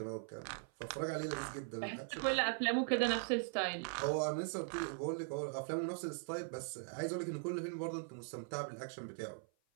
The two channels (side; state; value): left; silent; 51 dB below the other